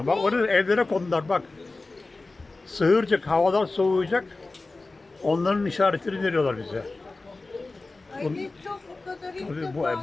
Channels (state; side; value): quieter; right; 3.4 dB